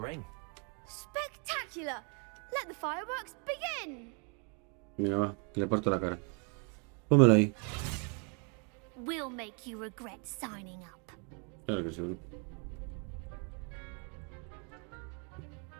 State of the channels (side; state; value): left; quieter; 36.7 dB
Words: Spectacular! Let the fireworks begin! Mira, va, le parto la cara. Pónmelo ahí. We'll make you regret signing up. Claro que sí, bro.